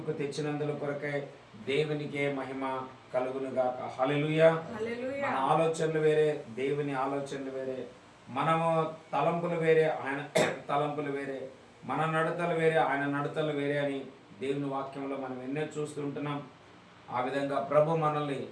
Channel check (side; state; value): both; identical; correlation 1.00